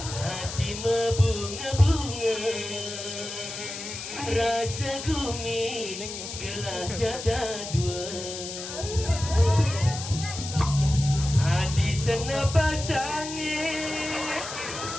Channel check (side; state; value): left; noise; hiss, 8 dB below the sound